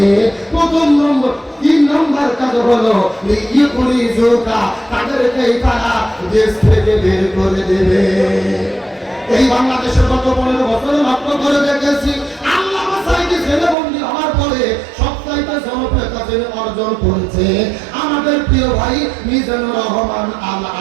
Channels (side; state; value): left; drops out; at 13.8 s